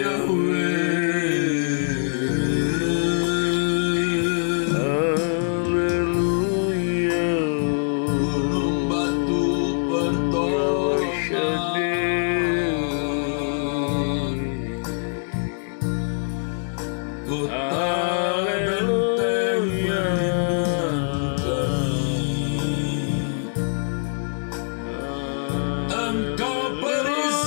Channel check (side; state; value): right; silent; 62 dB below the other